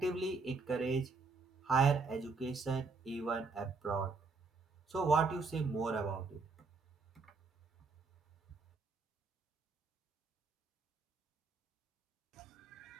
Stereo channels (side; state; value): left; quieter; 4.2 dB